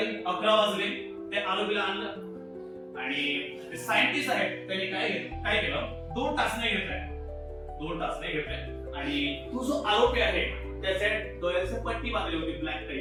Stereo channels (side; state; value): both; identical; correlation 1.00